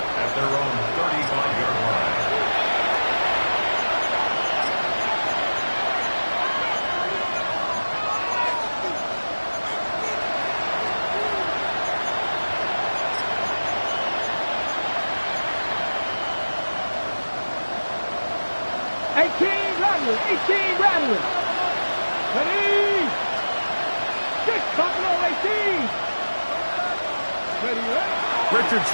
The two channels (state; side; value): inverted; both; correlation -1.00